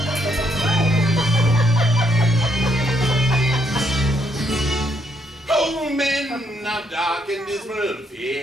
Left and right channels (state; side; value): normal; both; correlation 0.73